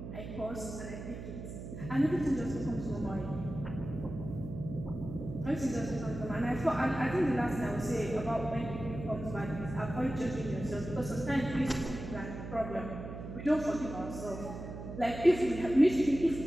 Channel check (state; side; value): noise; right; hum, 9 dB below the sound